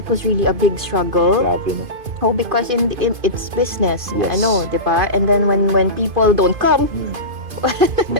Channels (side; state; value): left; late; 2.5 ms